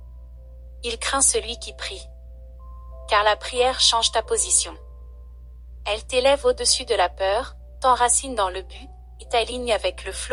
Il craint celui qui prie. Car la prière change ta position. Elle t'élève au-dessus de la peur, t'enracine dans le but, et t'aligne avec le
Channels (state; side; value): identical; both; correlation 1.00